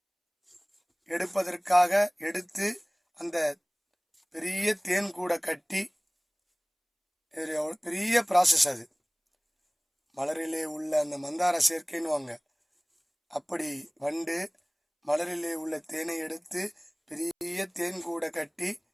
எடுப்பதற்காக எடுத்து அந்த பெரிய தேன் கூட கட்டி, பெரிய ப்ராசஸ் அது. மலரிலே உள்ள அந்த மந்தார சேர்க்கைன்னு அப்படி வண்டு மலரிலே உள்ள தேனை எடுத்து பெரிய தேன் கூட கட்டி,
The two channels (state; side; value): identical; both; correlation 1.00